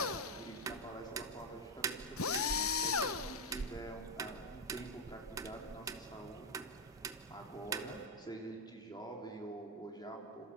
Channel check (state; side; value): normal; both; correlation 0.03